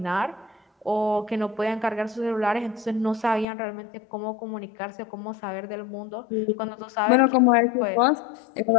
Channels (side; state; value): right; drops out; at 3.5 s